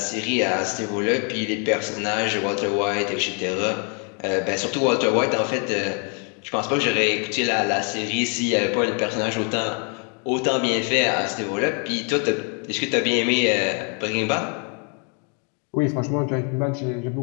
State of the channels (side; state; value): right; quieter; 38.6 dB